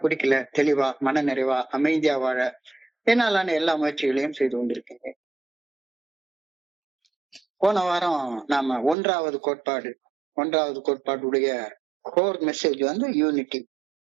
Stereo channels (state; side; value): drops out; left; at 9.0 s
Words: குடிக்கல, தெளிவா, மன நிறைவா, அமைதியா வாழ என்னாலான எல்லா முயற்சிகளையும் செய்து கொண்டிருக்கேன். போன வாரம் நாம ஒன்றாவது கோட்பாடுடைய கோர் மெசேஜ் வந்து unity.